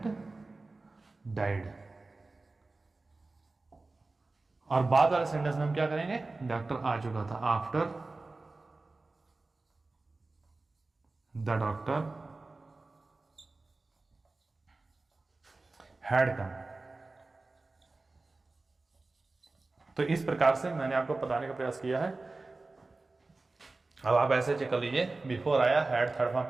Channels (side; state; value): left; quieter; 3.4 dB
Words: died. और बाद वाले सेंटेंस में हम क्या करेंगे, डॉक्टर आ चुका था। After the doctor had come. तो इस प्रकार से मैंने आपको बताने का प्रयास किया है। अब आप ऐसे चेक कर लीजिए, बिफोर आया, हैड थर्ड फॉर्म